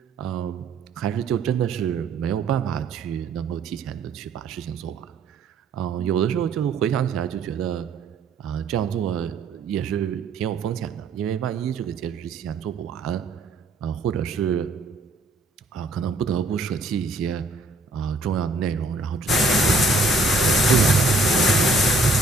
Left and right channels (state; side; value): quieter; left; 3.2 dB